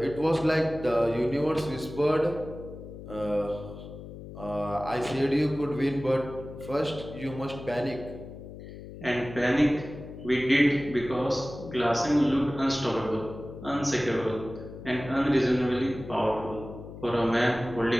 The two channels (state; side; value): noise; left; hum, 13 dB below the sound